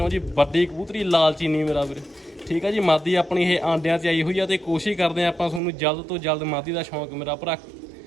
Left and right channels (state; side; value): drops out; left; at 5.6 s